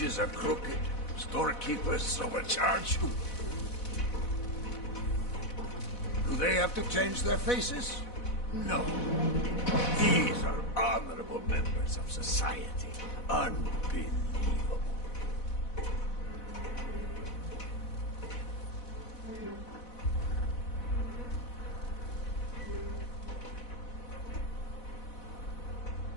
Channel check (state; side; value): late; right; 4.1 ms